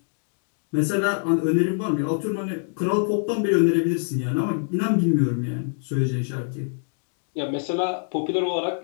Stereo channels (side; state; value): right; silent; digital silence